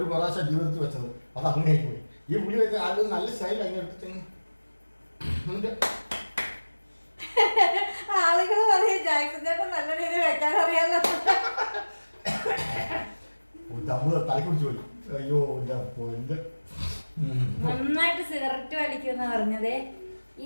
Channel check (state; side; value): inverted; both; correlation -1.00